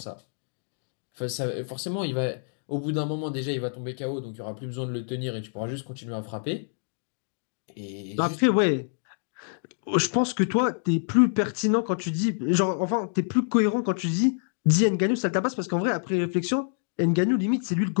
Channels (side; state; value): right; silent; digital silence